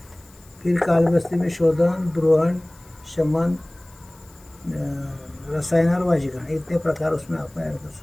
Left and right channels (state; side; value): noise; left; hiss, 27 dB below the sound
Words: फिर काल बस्ती में शोधन द्रोहण शमन रसायन और वाजीकरण, इतने प्रकार उसमें आप ऐड कर